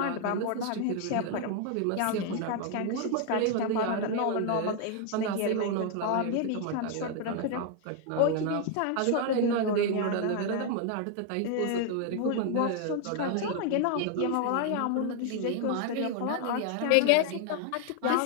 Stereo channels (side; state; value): both; different; correlation 0.00